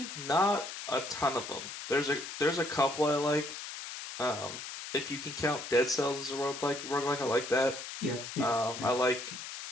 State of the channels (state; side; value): noise; left; hiss, 9 dB below the sound